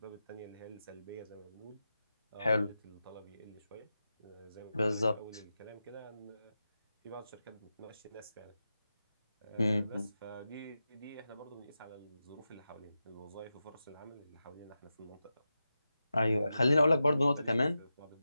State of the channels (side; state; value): both; inverted; correlation -0.91